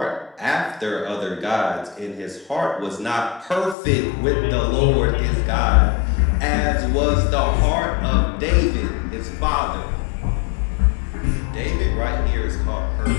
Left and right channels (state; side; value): drops out; right; at 3.8 s